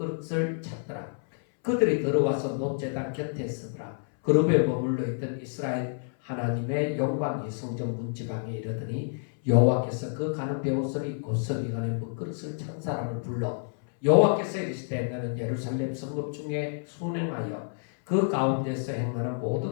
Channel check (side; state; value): right; silent; 59 dB below the other